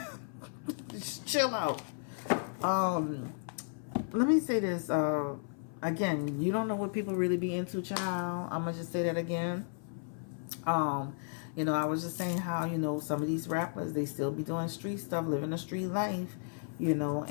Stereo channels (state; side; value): silent; right; 55 dB below the other